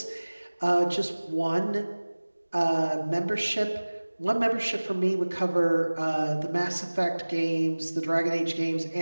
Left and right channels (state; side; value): inverted; both; correlation -1.00